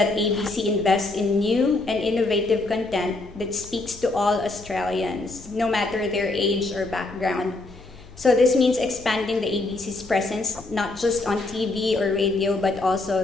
ABC invests in new and innovative content that speaks to all Australians, no matter their age or background. So this means expanding the ABC's presence, not just on TV or radio, but also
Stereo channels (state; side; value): quieter; right; 3.1 dB